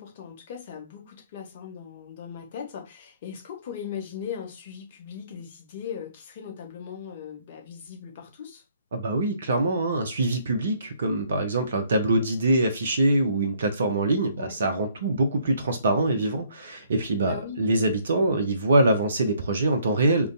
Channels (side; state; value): both; inverted; correlation -0.65